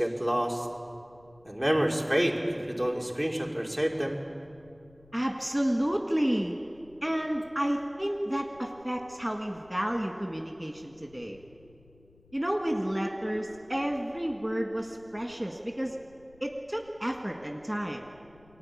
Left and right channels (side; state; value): left; noise; rumble, 27 dB below the sound